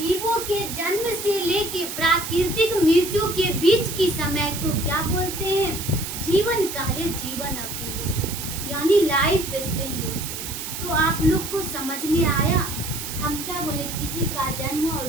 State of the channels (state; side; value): noise; right; hiss, 7 dB below the sound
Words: के जन्म से लेके प्राकृतिक मृत्यु के बीच की समय को क्या बोलते हैं? जीवन काल या जीवन अवधि बोलते हैं, यानी लाइफ स्पेन बोलते हैं। तो आप लोग को समझ में आया, हम क्या बोले, किसी का जन्म हुआ और